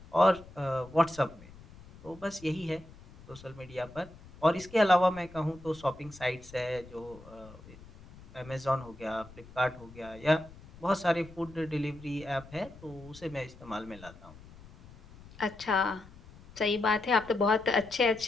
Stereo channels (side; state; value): left; noise; rumble, 20 dB below the sound